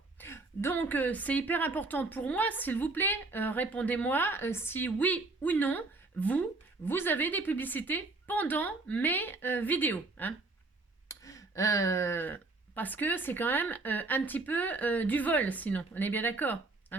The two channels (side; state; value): left; quieter; 3.4 dB